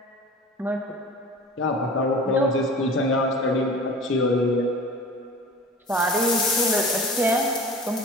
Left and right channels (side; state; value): both; normal; correlation 0.40